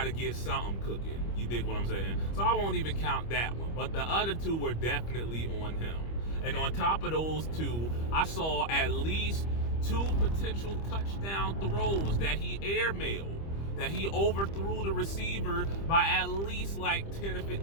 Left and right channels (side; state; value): right; late; 25 ms